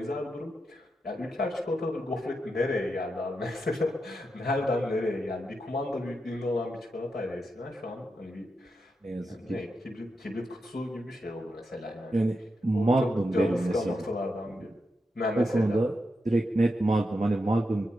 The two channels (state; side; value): normal; both; correlation 0.86